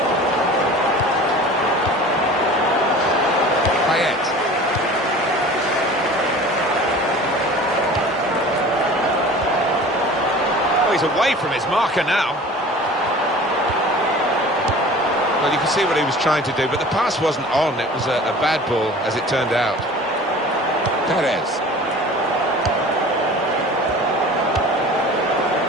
Payet. Oh, he's away from his marker now. Well, you can see what he was trying to do, but the pass wasn't on. It was a bad ball, as it turned out. Perez.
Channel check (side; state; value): both; normal; correlation 0.42